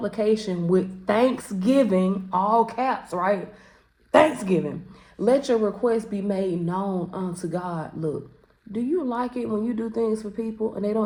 with thanksgiving, all caps, right? Thanksgiving. Let your request be made known unto God. Look, Do you like it when you do things for people and they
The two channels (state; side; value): identical; both; correlation 1.00